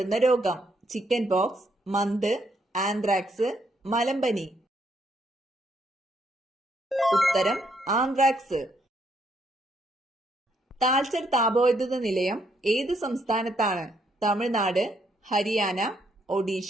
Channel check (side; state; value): both; normal; correlation 0.73